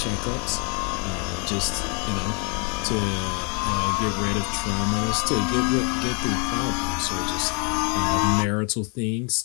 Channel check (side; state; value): right; quieter; 35.7 dB